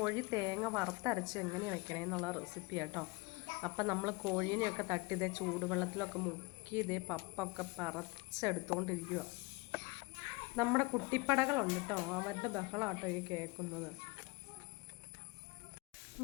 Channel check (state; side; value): quieter; right; 25.6 dB